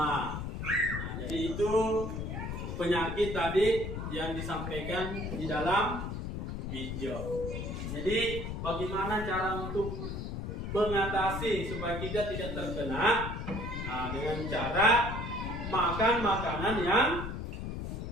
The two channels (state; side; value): noise; left; rumble, 5 dB below the sound